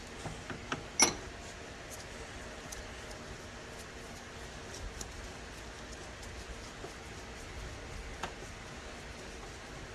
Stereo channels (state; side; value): identical; both; correlation 1.00